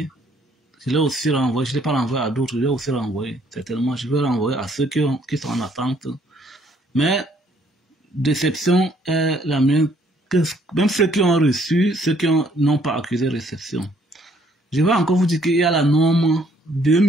je ne l'ai pas renvoyé à d'autres, je l'ai aussi renvoyé. Certainement, je vais renvoyer à ceux qui sont en attente. Mais déception est la mienne, que même ceux qui ont reçu, ceux qui n'ont pas accusé réception. Je vais encore vous dire qu'il y a la norme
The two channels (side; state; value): both; normal; correlation 0.65